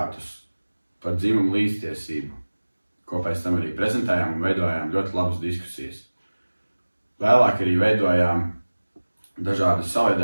par dzimumu līdztiesību, ko pēc tam arī prezentējām un veidojām ļoti labas diskusijas. Vēlāk arī veidojām dažādas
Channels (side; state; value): both; inverted; correlation -1.00